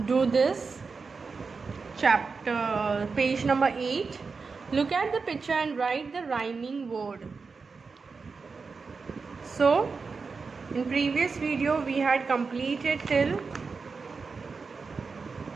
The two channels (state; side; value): quieter; left; 4.7 dB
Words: do this chapter, page number 8. Look at the picture and write the rhyming word. So in previous video we had completed till